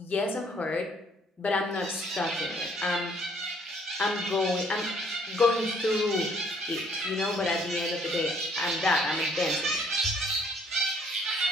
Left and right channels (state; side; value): normal; both; correlation 0.63